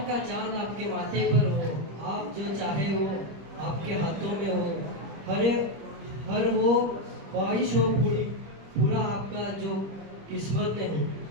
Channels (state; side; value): late; left; 25 ms